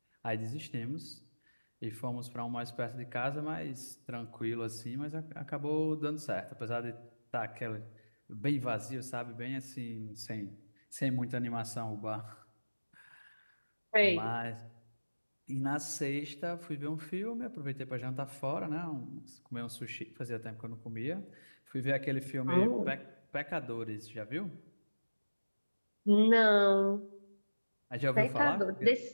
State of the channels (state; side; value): inverted; both; correlation -1.00